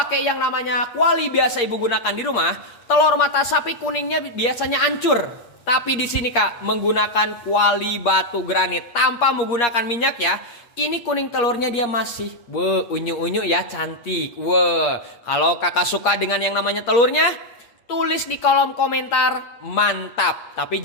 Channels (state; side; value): late; right; 8.5 ms